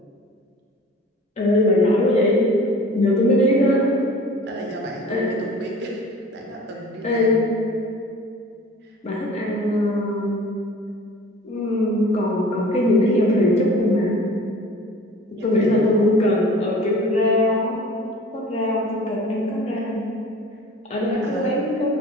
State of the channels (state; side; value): normal; both; correlation 0.44